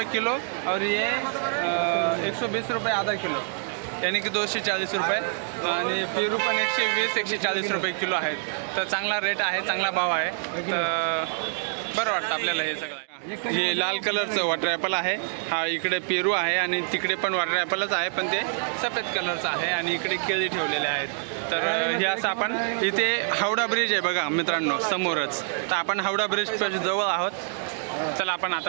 किलो. और ये 120 रुपये आधा किलो, यानी की 240 रुपये. आणि पेरू पण 120-140 रुपये किलो आहेत. तर चांगला रेट आहे, चांगला भाव आहे. तर बरं वाटतं आपल्याला हे सगळं. हे लाल कलरचं वॉटर ॲपल आहे. हा इकडे पेरू आहे आणि तिकडे पण वॉटर ॲपलच आहे, पण ते सफेद कलरचं आहे. आणि इकडे केळी ठेवलेले आहेत. तर हे असं आपण इथे हावडा ब्रिज आहे बघा मित्रांनो समोरच. तर आपण हावडा ब्रिज जवळ आहोत. चला आपण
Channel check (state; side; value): silent; left; 61 dB below the other